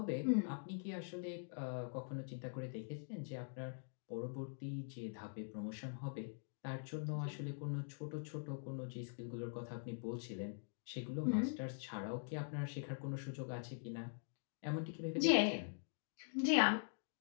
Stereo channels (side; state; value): right; silent; digital silence